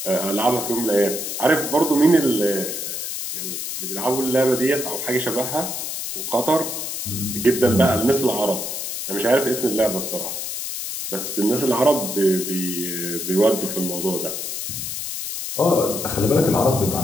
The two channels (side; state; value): left; noise; hiss, 5 dB below the sound